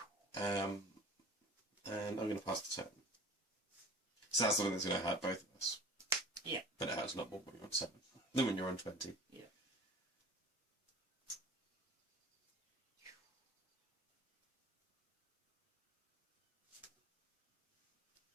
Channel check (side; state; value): both; normal; correlation 0.41